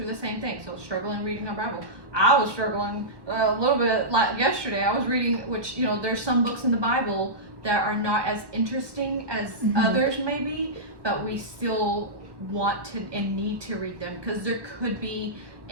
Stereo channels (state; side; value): late; left; 1.1 ms